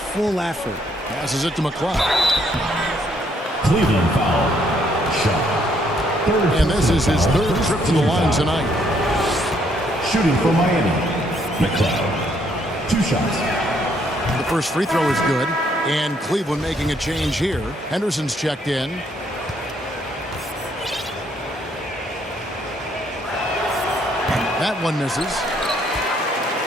effort. Passes it to McLeod. Cleveland foul. Shot. Third And this is his personal third foul. trip to the line First team foul. tonight. Shooting for Miami. McLeod. 2 shots. The first free throw is good. And Cleveland making a change here. Henderson's checked in. That one misses.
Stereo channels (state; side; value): normal; both; correlation 0.69